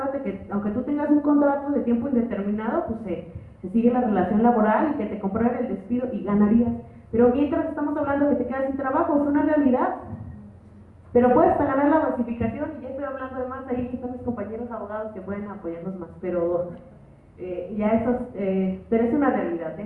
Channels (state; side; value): identical; both; correlation 1.00